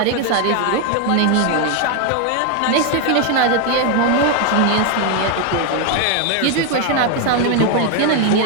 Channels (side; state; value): both; different; correlation 0.01